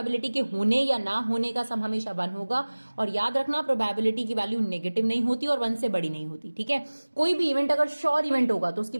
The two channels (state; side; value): inverted; both; correlation -1.00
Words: के होने या ना होने का सम हमेशा 1 होगा, और याद रखना प्रोबेबिलिटी की वैल्यू नेगेटिव नहीं होती और 1 से बड़ी नहीं होती। ठीक है, कोई भी इवेंट अगर श्योर इवेंट होगा तो उसकी